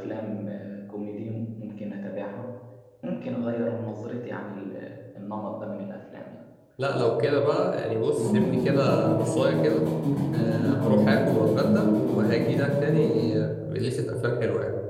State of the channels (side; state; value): both; identical; correlation 1.00